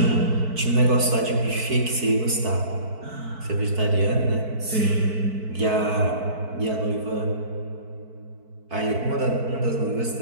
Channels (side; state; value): left; late; 4.5 ms